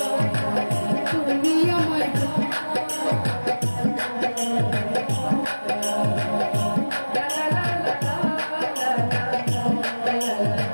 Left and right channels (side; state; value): both; inverted; correlation -1.00